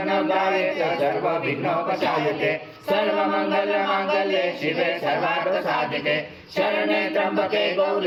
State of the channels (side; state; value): both; identical; correlation 1.00